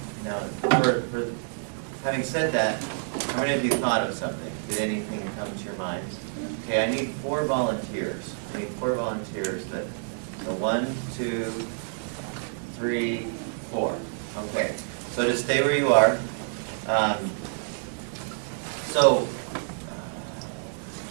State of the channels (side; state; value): left; silent; digital silence